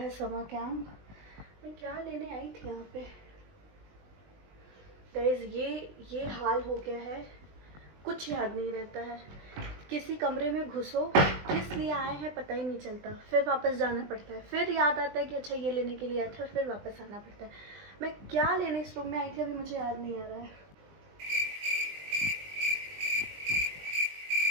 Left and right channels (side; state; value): left; late; 20 ms